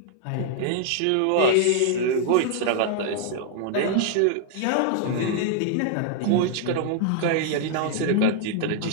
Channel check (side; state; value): both; different; correlation -0.01